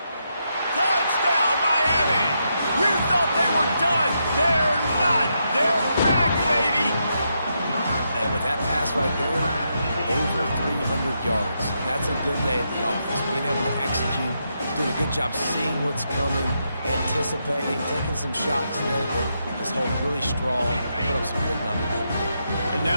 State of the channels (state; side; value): inverted; both; correlation -0.82